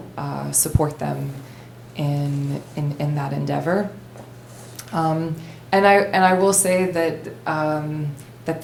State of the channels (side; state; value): both; identical; correlation 1.00